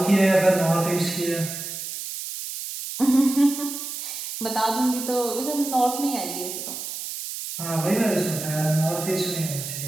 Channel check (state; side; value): noise; right; hiss, 7 dB below the sound